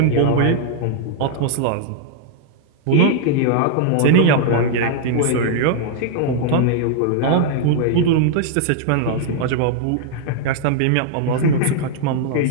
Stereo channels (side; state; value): both; different; correlation -0.01